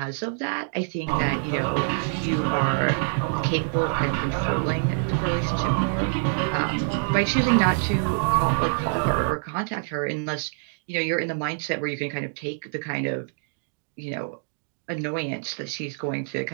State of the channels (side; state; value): left; silent; 61 dB below the other